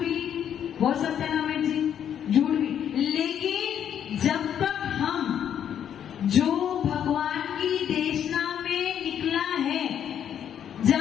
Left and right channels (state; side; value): quieter; right; 9.3 dB